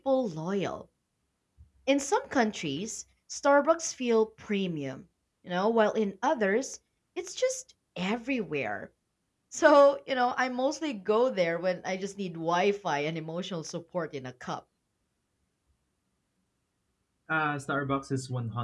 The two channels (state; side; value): identical; both; correlation 1.00